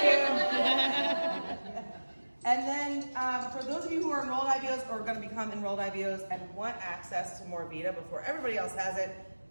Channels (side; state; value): both; inverted; correlation -1.00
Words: you. And then for those of you who are enrolled IBOs or are going to become enrolled IBOs and want access to more Vita before everybody else has it,